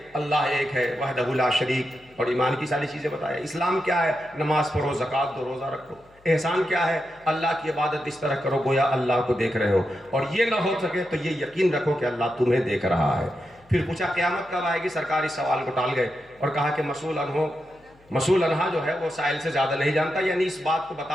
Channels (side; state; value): left; noise; hum, 29 dB below the sound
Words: اللہ ایک ہے وحدہ لا شریک، اور ایمان کی ساری چیزیں بتایا۔ اسلام کیا ہے؟ نماز پڑھو، زکوٰۃ دو، روزہ رکھو۔ احسان کیا ہے؟ اللہ کی عبادت اس طرح کرو گویا اللہ کو دیکھ رہے ہو، اور یہ نہ ہو سکے تو یہ یقین رکھو کہ اللہ تمہیں دیکھ رہا ہے۔ پھر پوچھا قیامت کب آئے گی؟ سرکار اس سوال کو ٹال گئے اور کہا کہ مسئول عنہا جو ہے وہ سائل سے زیادہ نہیں جانتا، یعنی اس بات کو